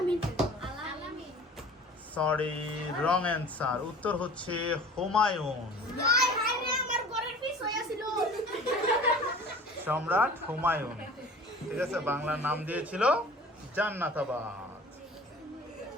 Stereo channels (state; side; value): normal; both; correlation 0.43